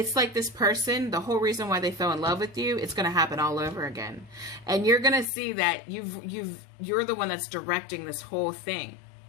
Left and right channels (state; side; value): drops out; right; at 5.2 s